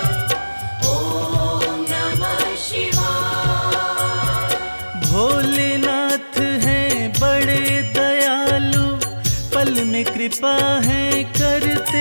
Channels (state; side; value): inverted; both; correlation -1.00